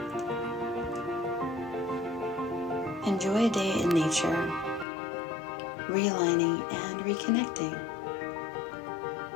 Enjoy a day in nature, realigning and reconnecting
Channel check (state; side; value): drops out; right; at 4.9 s